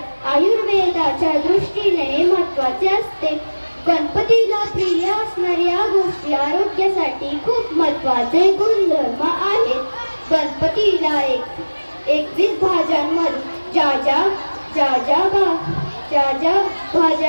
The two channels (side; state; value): both; inverted; correlation -1.00